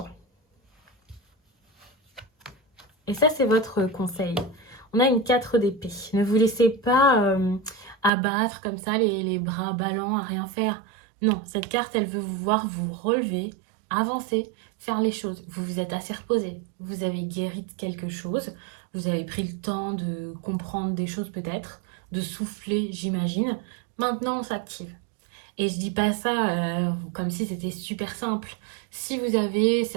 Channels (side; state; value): left; drops out; at 8.1 s